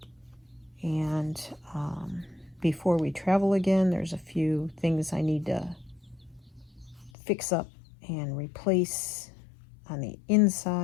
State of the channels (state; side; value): drops out; right; at 7.1 s